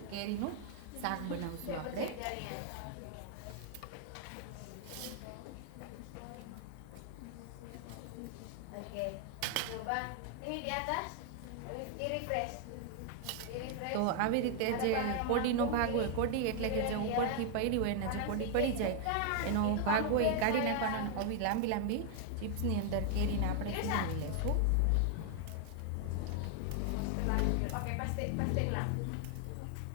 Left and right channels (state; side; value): different; both; correlation 0.00